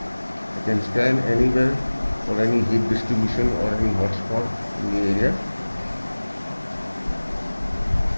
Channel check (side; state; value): both; inverted; correlation -1.00